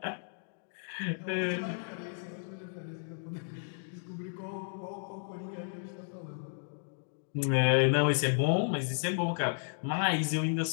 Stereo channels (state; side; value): silent; right; digital silence